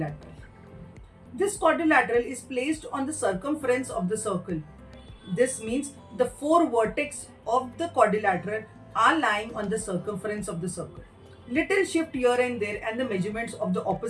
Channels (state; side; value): identical; both; correlation 1.00